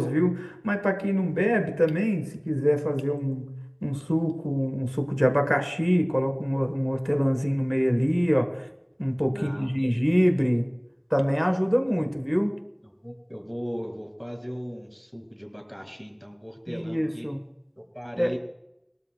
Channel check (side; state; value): both; identical; correlation 1.00